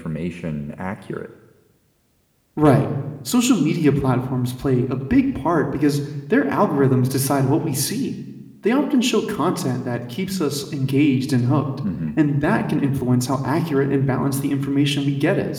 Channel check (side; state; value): both; identical; correlation 1.00